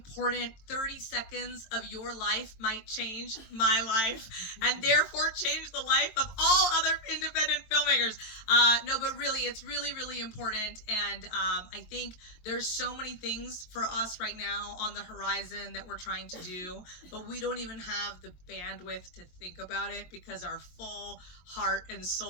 30 seconds of your life might change my life and therefore change the life of all other independent filmmakers. No, but really, it's really, really important. And I think there's so many things for us right now on the horizon that we're trying to do, but we don't even have the bandwidth to think about it because our full heart and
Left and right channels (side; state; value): right; late; 22 ms